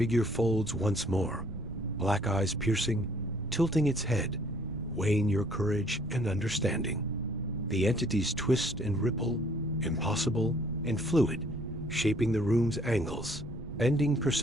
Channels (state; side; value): noise; right; rumble, 11 dB below the sound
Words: folds once more, black eyes piercing, tilting its head, weighing your courage and understanding. The entities twist and ripple, impossible and fluid, shaping the room's angles, bending